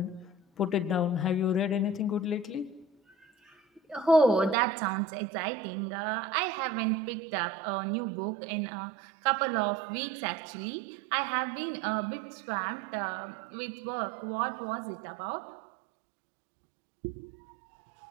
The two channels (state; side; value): drops out; left; at 4.5 s